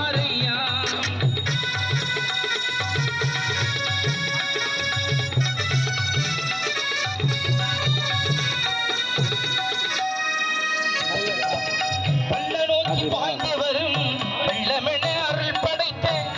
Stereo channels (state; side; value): identical; both; correlation 1.00